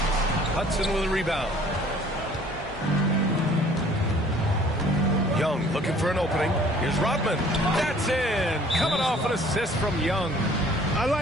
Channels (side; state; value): both; normal; correlation 0.55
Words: Hudson with a rebound. Young looking for an opening. Here's Rodman. That's in. Coming off an assist from Young. I